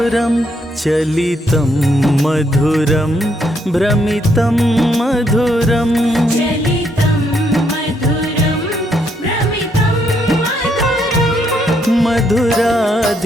चलितं मधुरं भ्रमितं मधुरं चलितं मधुरं भ्रमितं मधुरं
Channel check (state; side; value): normal; both; correlation 0.74